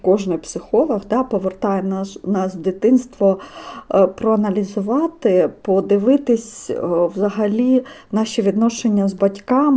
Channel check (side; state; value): both; identical; correlation 1.00